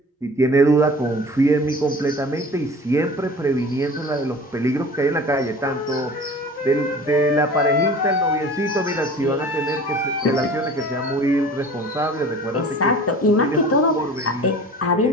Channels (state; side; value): normal; both; correlation 0.41